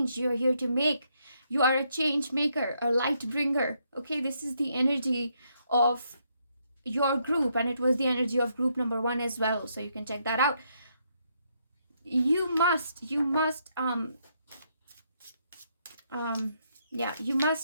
you're here to make. You are a change maker, a light bringer. Okay, this is the energy of your group, and it was the energy of group number 1 as well. So you can check that out. You must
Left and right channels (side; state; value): both; inverted; correlation -0.75